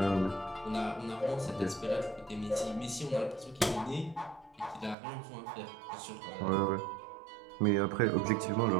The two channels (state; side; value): drops out; left; at 5.0 s